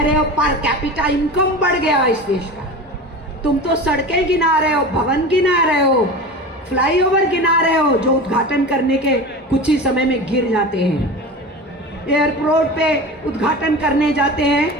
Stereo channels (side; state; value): both; normal; correlation 0.31